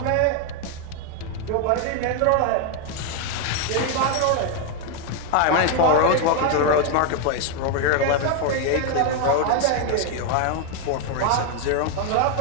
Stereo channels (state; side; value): different; both; correlation 0.01